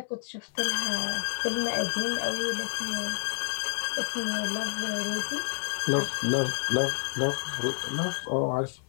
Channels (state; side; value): silent; right; 58 dB below the other